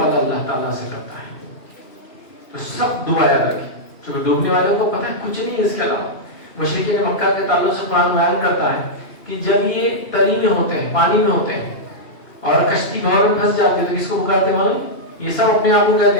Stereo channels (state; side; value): late; right; 2.7 ms